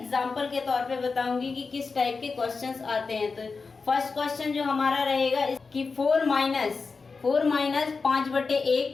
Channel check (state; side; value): quieter; right; 4.5 dB